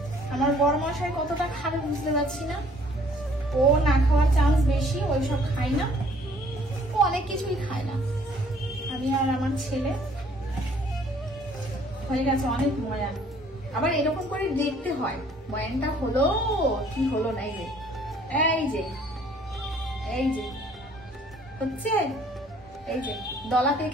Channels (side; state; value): both; normal; correlation 0.59